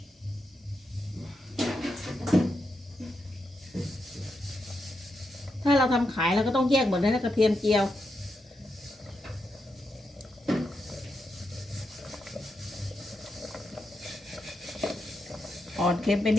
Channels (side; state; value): both; normal; correlation 0.84